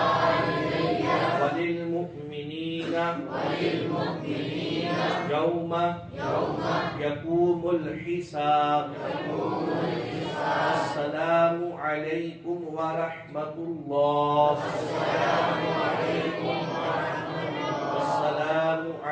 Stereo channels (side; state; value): both; identical; correlation 1.00